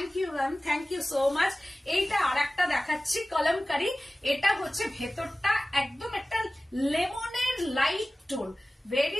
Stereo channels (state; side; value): normal; both; correlation 0.97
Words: you ma'am, thank you so much. এইটা আর একটা দেখাচ্ছি কলমকারি। এটা হচ্ছে ভেতরটা একদম একটা লেমনের light tone,